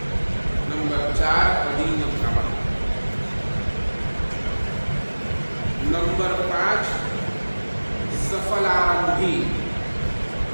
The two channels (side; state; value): both; inverted; correlation -1.00